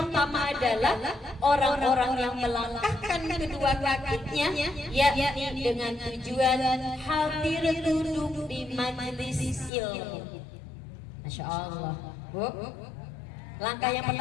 adalah orang-orang yang melangkahkan kedua kakinya, yakni dengan tujuan hadir duduk di majelis ilmu. Masya Allah, Bu. Langkah yang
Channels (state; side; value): drops out; right; at 9.7 s